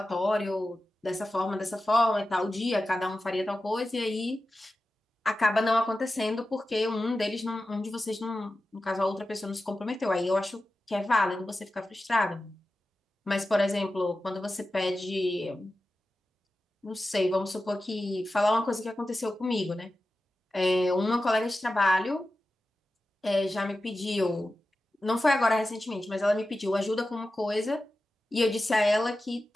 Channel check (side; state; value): both; normal; correlation 0.94